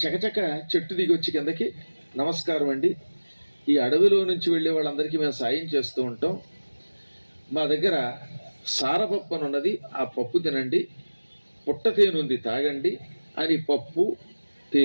చకచక చెట్టు దిగి వచ్చి కిందకి, నమస్కారం అండి, ఈ అడవిలో నుంచి వెళ్ళే వాళ్ళందరికీ మేము సాయం చేస్తూ ఉంటాం. మా దగ్గర సారపప్పు అని ఉన్నది, ఆ పప్పు తినండి, పుట్ట తేనె ఉంది తాగండి అని పప్పు,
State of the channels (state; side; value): inverted; both; correlation -1.00